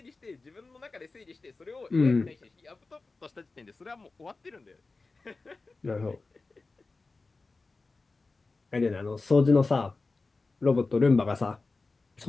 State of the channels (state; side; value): quieter; right; 3.7 dB